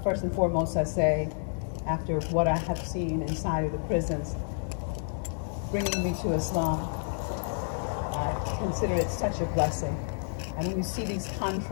First and foremost, I say, after what I have seen inside of the prisons, bringing me to Islam, I consider it such a blessing. And when you see these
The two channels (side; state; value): right; silent; 58 dB below the other